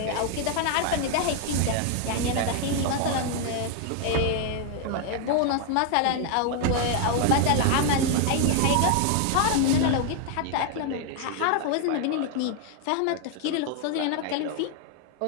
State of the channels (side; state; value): both; different; correlation 0.00